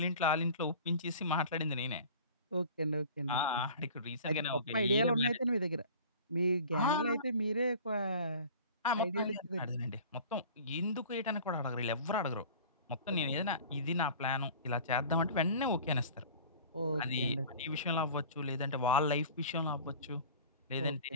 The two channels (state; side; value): inverted; both; correlation -0.42